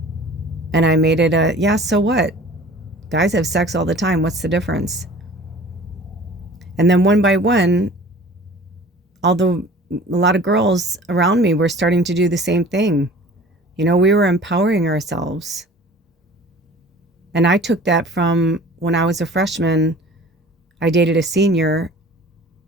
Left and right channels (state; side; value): normal; both; correlation 0.45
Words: And I made it yeah, so what? Guys have sex all the time. What's the difference? And then one by one, a lot of girls around me were starting to do the same thing. We were empowering ourselves. And I took that from when I was a freshman. I dated a senior,